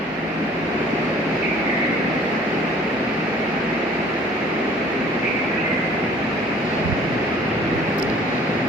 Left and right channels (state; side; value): noise; left; hum, 29 dB below the sound